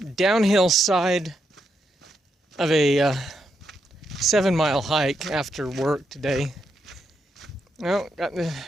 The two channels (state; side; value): normal; both; correlation 0.81